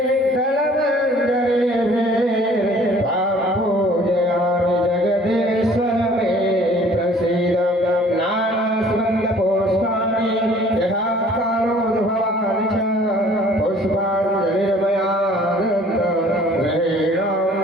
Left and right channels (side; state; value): both; normal; correlation 0.54